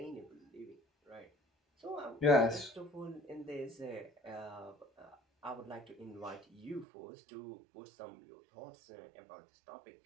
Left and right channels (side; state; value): left; drops out; at 6.9 s